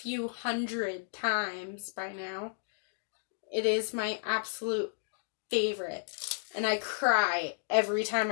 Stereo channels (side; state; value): right; silent; digital silence